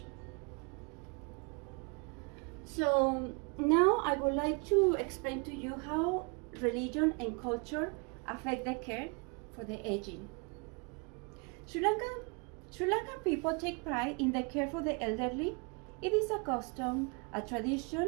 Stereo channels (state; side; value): quieter; left; 33.2 dB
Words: So now I would like to explain to you how religion and culture affect the care for the aging. Sri Lankan people take pride in the care for the elderly. It is a custom, a